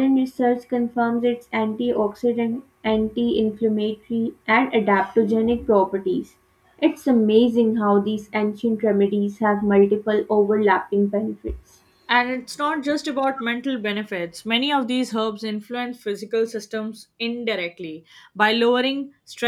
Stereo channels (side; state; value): both; identical; correlation 1.00